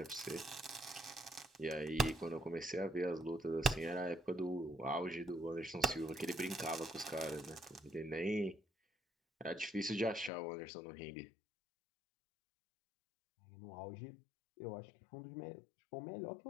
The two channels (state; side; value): drops out; right; at 10.3 s